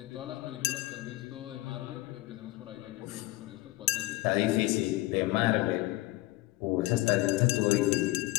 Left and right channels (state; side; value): quieter; right; 19.4 dB